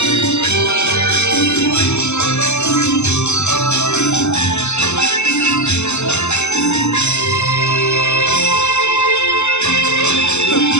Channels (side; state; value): right; late; 0.82 ms